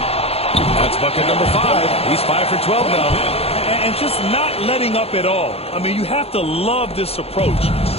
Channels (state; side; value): late; right; 0.29 ms